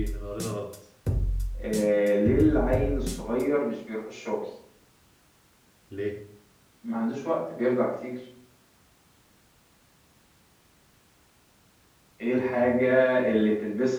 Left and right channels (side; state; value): both; identical; correlation 1.00